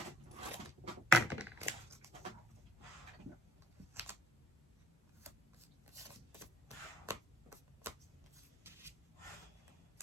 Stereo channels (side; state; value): both; normal; correlation 0.62